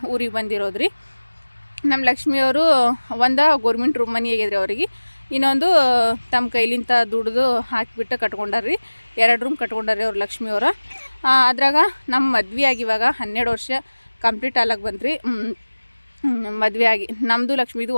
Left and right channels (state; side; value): inverted; both; correlation -1.00